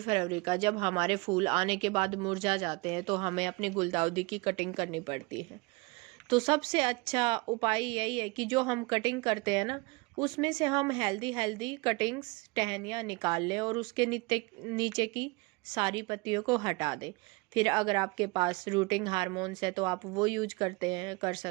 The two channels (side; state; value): left; quieter; 25.9 dB